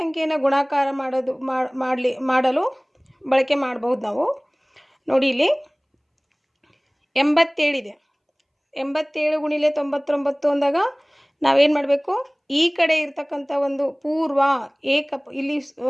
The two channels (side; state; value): both; identical; correlation 1.00